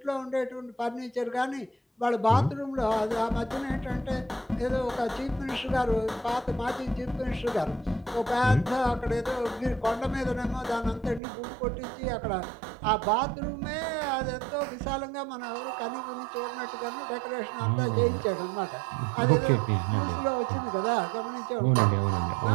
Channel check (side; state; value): left; drops out; at 11.2 s